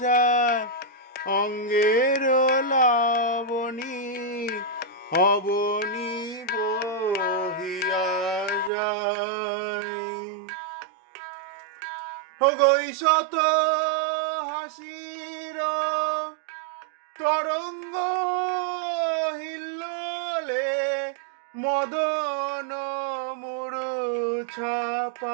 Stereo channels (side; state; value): left; drops out; at 8.7 s